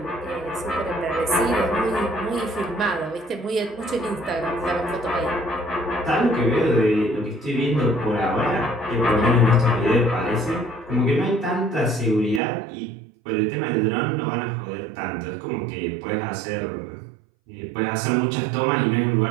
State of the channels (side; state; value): left; drops out; at 12.4 s